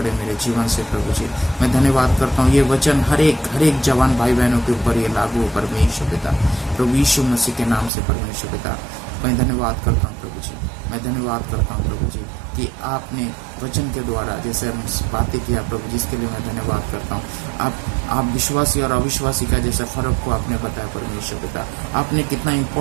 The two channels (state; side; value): drops out; left; at 7.9 s